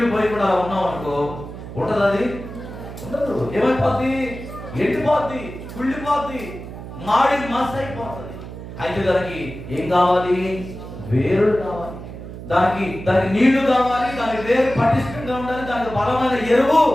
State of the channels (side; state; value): right; noise; hum, 11 dB below the sound